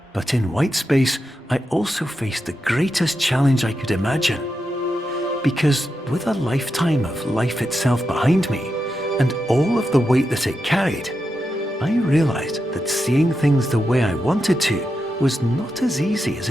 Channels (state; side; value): normal; both; correlation 0.87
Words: But in white space, I also faced the greatest challenge I could imagine. Because with a lifetime of life itself behind me, and all of the weight that it carried, I realized that seeing things the way I wanted to was not as easy as